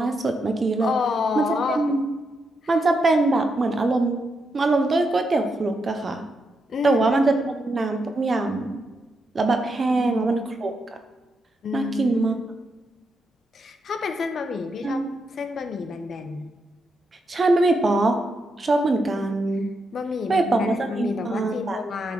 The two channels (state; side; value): normal; both; correlation 0.82